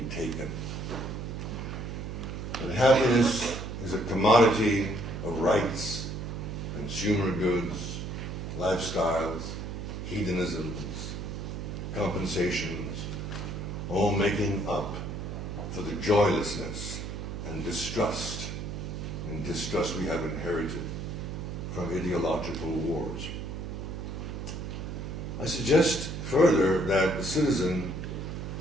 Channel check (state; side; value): noise; right; hum, 6 dB below the sound